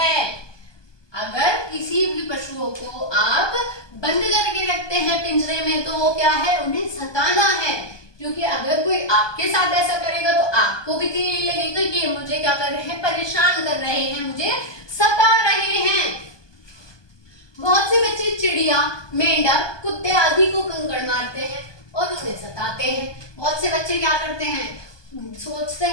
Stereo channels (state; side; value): late; right; 1.2 ms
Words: अगर किसी भी पशुओं को आप बंद करके रखते हैं पिंजरे में तो वो क्या है? उन्हें सताना है। क्योंकि अगर कोई आपके साथ ऐसा करेगा तो आपको भी तो यही लगेगा कि मुझे क्या कर रहे हैं? परेशान कर रहे हैं, मुझे सता रहे हैं। बहुत से बच्चे चिड़िया, मेंढक, कुत्ते आदि को कंकड़ मारते हैं और उन्हें सताते हैं। बहुत से बच्चे क्या करते हैं? सोचते